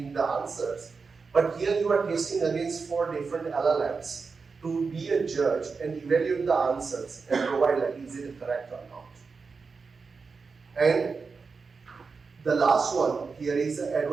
the answers. But here you are testing against 4 different LLMs to be a judge and evaluate the answers and provide is it correct or not. And the last one here is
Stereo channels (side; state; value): left; quieter; 4.8 dB